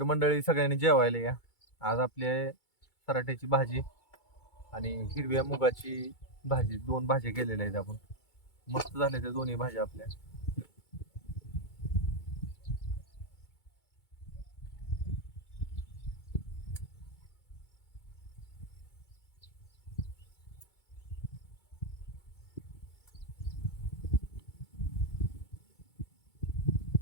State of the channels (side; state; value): right; late; 2.2 ms